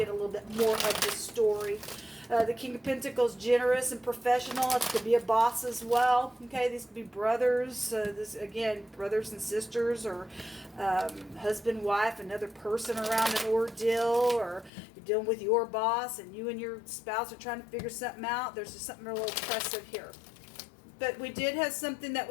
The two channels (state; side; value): drops out; right; at 14.7 s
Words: a little bit more of the story. The King of Pentacles, generous and professional. It could be a boss as well. Okay, these could be brothers. This again, brothers and sisters, or husband, wife, another person around an ordeal, or you're dealing with your boss and you and your spouse are trying to figure something out. There's just something real oppressive here. But we did have something that